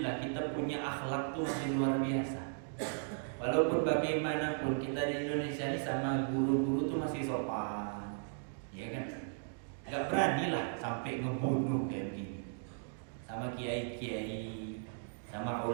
kita punya akhlak tuh masih luar biasa. Walaupun bagaimanapun kita di Indonesia ini sama guru-guru tuh masih sopan, ya kan? Nggak berani lah sampai ngebunuh kayak begini. Sama kiai-kiai, sama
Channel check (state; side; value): silent; left; digital silence